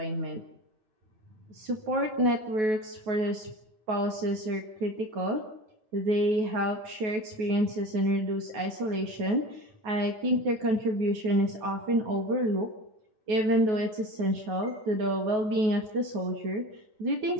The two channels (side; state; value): left; late; 9.3 ms